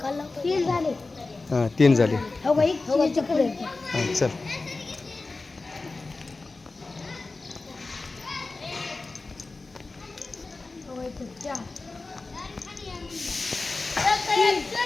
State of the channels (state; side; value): quieter; right; 3.6 dB